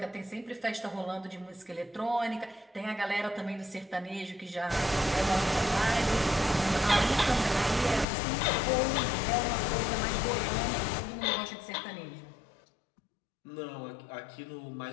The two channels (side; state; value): right; drops out; at 8.1 s